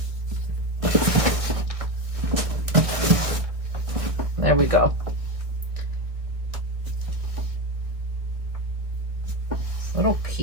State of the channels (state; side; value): late; left; 1.7 ms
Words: There we go. Little